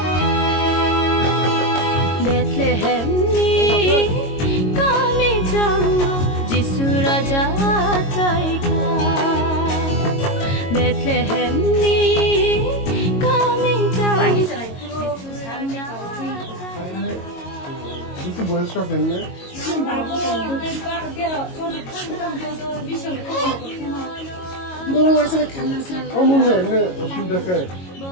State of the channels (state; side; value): late; right; 22 ms